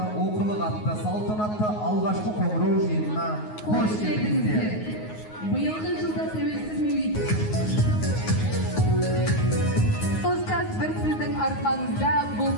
оқылық атты, салтанатты алғашқы қоңырау жиынына қош келдіңіздер. Биылғы жылда тәуелсіз мемлекет. Ұстаз бір сіздің арқаңызда бұл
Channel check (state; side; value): late; right; 9.5 ms